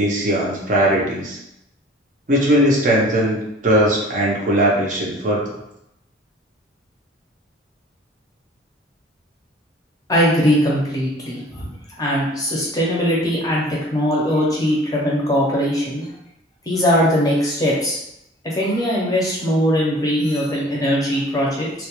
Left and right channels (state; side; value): normal; both; correlation 0.46